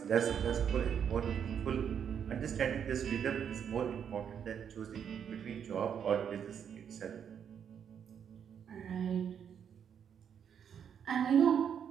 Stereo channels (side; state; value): left; quieter; 8.1 dB